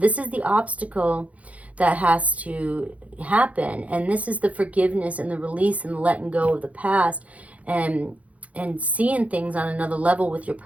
is the obstacle that has to happen, and this is the forgiveness and the release and the letting go of the past, and seeing things on another level with your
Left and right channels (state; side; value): late; left; 0.067 ms